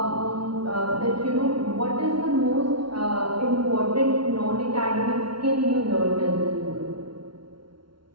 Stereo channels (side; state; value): left; late; 0.73 ms